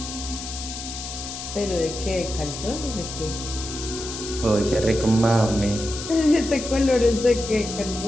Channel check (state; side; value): noise; left; hiss, 8 dB below the sound